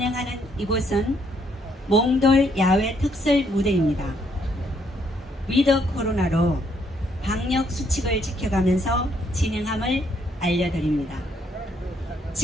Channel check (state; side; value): normal; both; correlation 0.70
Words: 이곳은 몽돌 야외 특설 무대입니다. 위드 코로나로 방역 수칙을 지켜가면서 진행함을 알려드립니다.